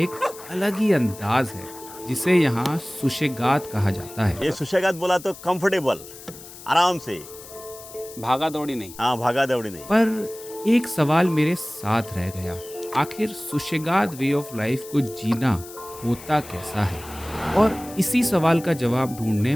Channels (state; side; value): noise; left; hiss, 16 dB below the sound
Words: अलग ही अंदाज है, जिसे यहाँ सुशेगात कहा जाता है। ये सुशेगात बोला तो कंफर्टेबल, आराम से। भागा दौड़ी नहीं। हाँ, भागा दौड़ी नहीं। पर एक सवाल मेरे साथ रह गया, आखिर सुशेगात वे ऑफ लाइफ को जीना होता कैसा है? और इसी सवाल का जवाब ढूंढने